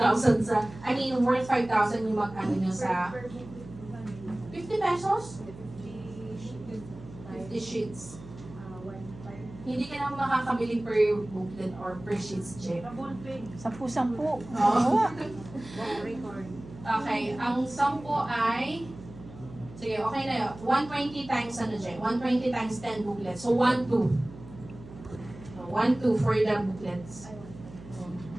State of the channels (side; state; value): right; noise; hum, 16 dB below the sound